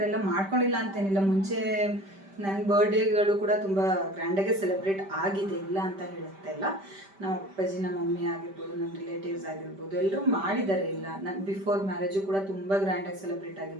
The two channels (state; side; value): late; left; 5.1 ms